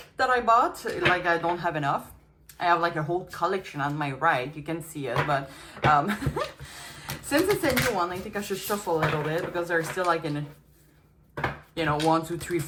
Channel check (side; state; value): both; identical; correlation 1.00